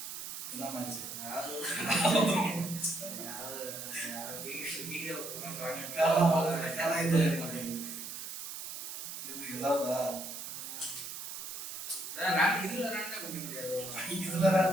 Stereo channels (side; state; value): right; noise; hiss, 8 dB below the sound